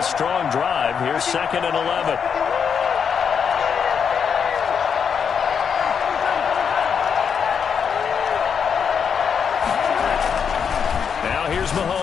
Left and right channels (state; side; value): quieter; right; 6.9 dB